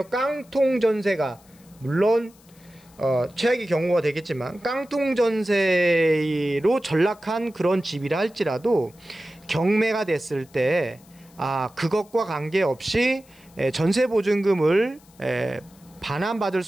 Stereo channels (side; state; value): left; noise; hiss, 28 dB below the sound